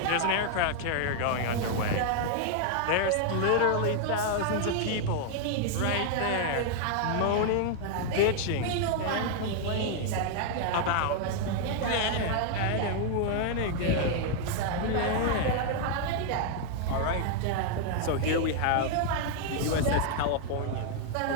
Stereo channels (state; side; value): different; both; correlation 0.00